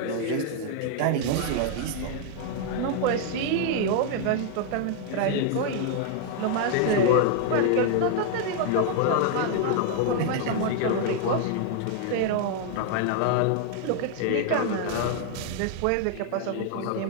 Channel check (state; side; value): different; both; correlation 0.00